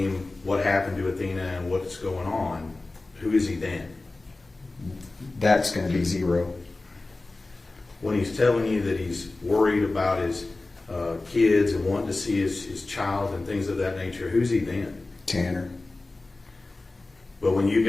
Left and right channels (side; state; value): right; quieter; 3.2 dB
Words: what happened to Athena and what's going on, who is he then? That's going to be Zero. When he's telling you that he's worried about his kids and wanting to see his child and things of that nature, who's he then? Tanner. But when you